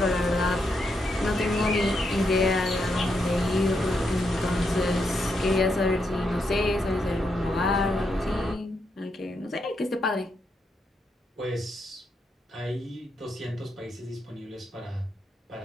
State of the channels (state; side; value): normal; both; correlation 0.81